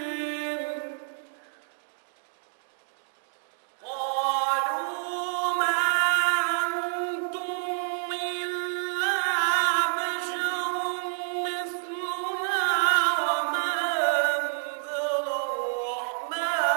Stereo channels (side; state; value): left; silent; digital silence